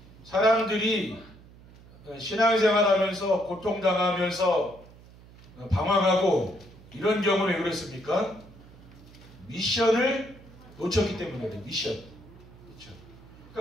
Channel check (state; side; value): noise; right; hum, 22 dB below the sound